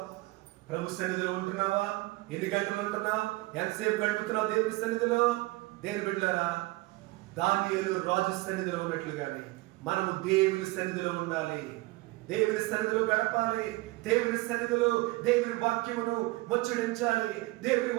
ప్రభు సన్నిధిలో ఉంటున్నావా? ఎన్ని గంటలు ఉంటున్నావు? ఎంతసేపు గడుపుతున్నావు దేవుని సన్నిధిలో? దేవుని బిడ్డలారా, దానియేలు రాజు సన్నిధిలో ఉన్నట్లుగానే మనము దేవుని సన్నిధిలో ఉండాలి. దేవుని సన్నిధిలో గడపాలి. దేవుని సన్నిధిలో దేవుని వాక్యమును ముచ్చడించాలి. దేవుని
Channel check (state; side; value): quieter; left; 21.3 dB